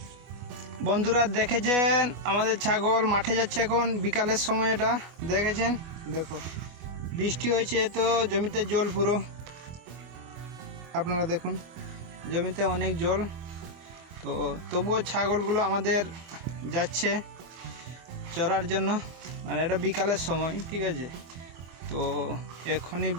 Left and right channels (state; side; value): late; left; 25 ms